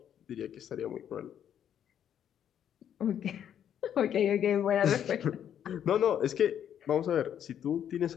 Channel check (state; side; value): quieter; right; 9.5 dB